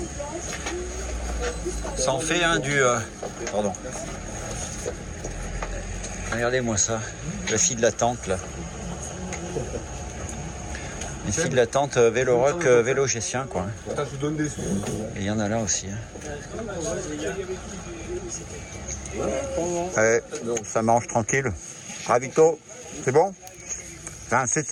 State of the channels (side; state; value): both; identical; correlation 1.00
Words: Ça en fait un du... pardon. Regardez-moi ça, la fille de la tente là. Les filles de la tente Vélorock, vélo gessien quoi. Et il y en a là aussi. Allez, ça mange tranquille. Ravito, c'est bon?